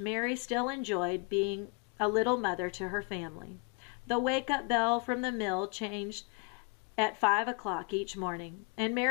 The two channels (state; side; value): quieter; right; 32.4 dB